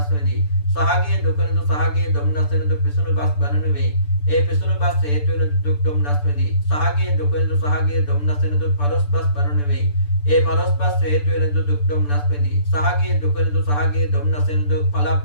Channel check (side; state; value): right; late; 6.8 ms